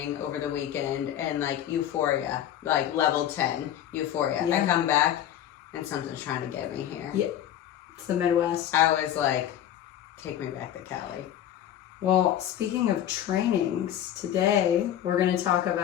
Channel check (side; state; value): right; quieter; 11.1 dB